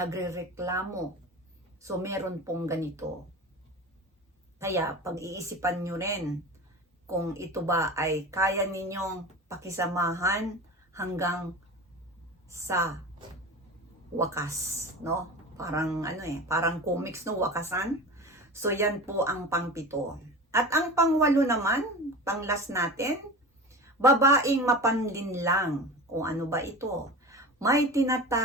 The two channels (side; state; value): both; normal; correlation 0.32